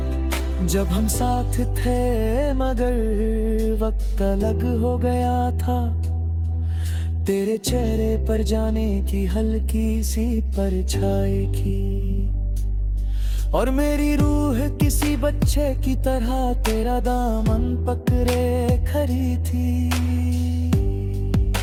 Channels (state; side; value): identical; both; correlation 1.00